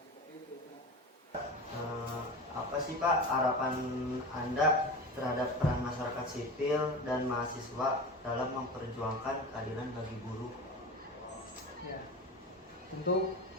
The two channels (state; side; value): normal; both; correlation 0.29